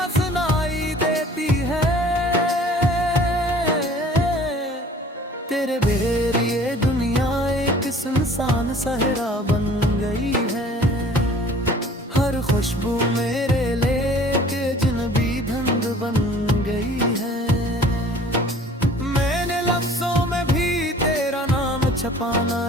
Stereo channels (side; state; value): both; normal; correlation 0.50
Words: सुनाई देती है। तेरे बगैर ये दुनिया एक सुनसान सहरा बन गई है। हर खुशबू मेरे लेके अजनबी धुंध बन गई है। मैंने लफ्जों में भी तेरा नाम छपाना